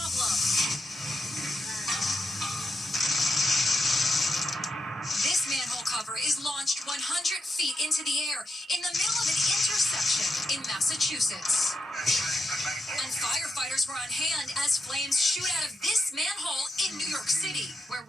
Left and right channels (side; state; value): both; normal; correlation 0.84